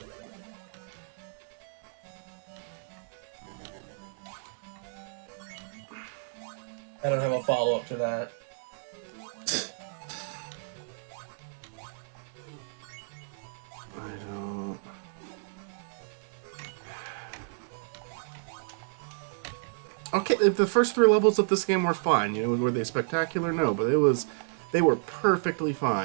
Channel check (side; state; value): left; silent; digital silence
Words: I don't have a follow-up to that. I don't... Okay, the first 3 levels of this game were fine. Were they spectacular? No, but they were perfectly